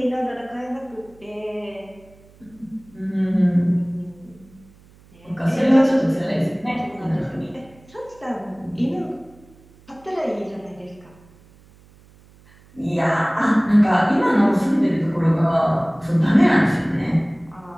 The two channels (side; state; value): right; noise; hum, 27 dB below the sound